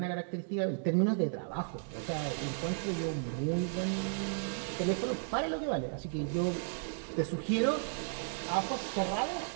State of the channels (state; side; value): silent; left; digital silence